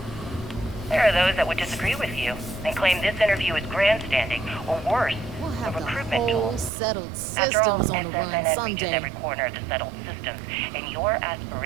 There are those that would disagree with you and claim this interview is grandstanding, or worse, a recruitment tool. After all, SSNN reaches every corner of the settled systems, and your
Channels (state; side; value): drops out; left; at 6.7 s